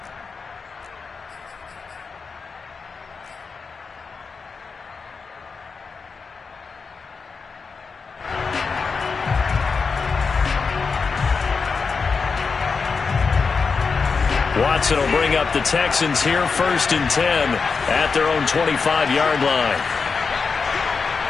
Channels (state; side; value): quieter; right; 5.0 dB